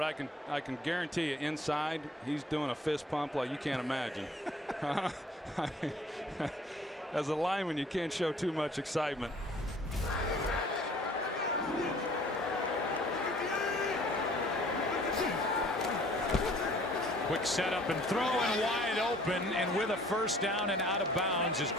I can guarantee you inside he's doing a fist pump like you can't imagine. As a lineman, you can't show too much excitement. Quick setup and throw, and wide open, and with a 1st down and out of bounds is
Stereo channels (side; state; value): both; normal; correlation 0.55